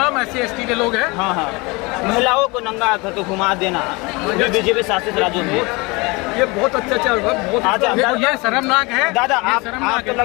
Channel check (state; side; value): quieter; right; 25.8 dB